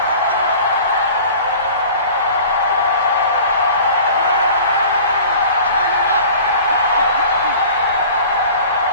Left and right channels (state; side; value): inverted; both; correlation -0.43